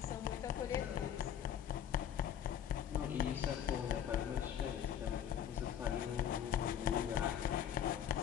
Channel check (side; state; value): right; quieter; 9.4 dB